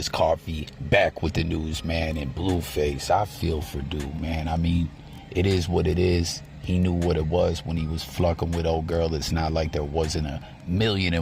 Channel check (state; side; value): identical; both; correlation 1.00